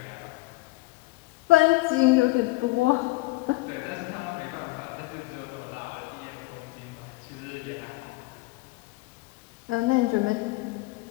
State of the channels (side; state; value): right; quieter; 21.2 dB